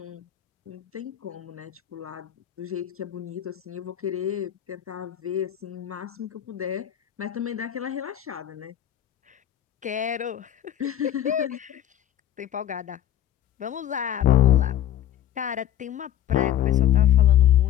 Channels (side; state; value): right; quieter; 11.3 dB